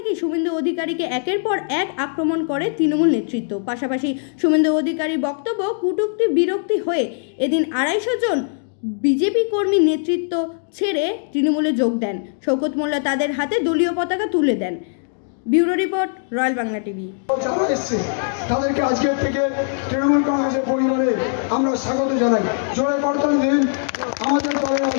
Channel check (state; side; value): silent; right; digital silence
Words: শুভেন্দু অধিকারীকে একের পর এক আক্রমণ করে তৃণমূল নেতৃত্ব। পাশাপাশি শুভেন্দু অধিকারীর বক্তব্য কটূক্তি বিরক্তি হয়ে এদিন 250 জন বিজেপি কর্মী নেতৃত্ব ছেড়ে তৃণমূলে যোগ দেন। শওকত মোল্লা তাদের হাতে দলীয় পতাকা তুলে দেন। Bureau report, royal Bangla TV. তাদেরকে আজকের থেকে তৃণমূল কংগ্রেসের পরিবারে আমরা স্বাগত জানাই। জোরে করতালি দিন। আমাদের দলের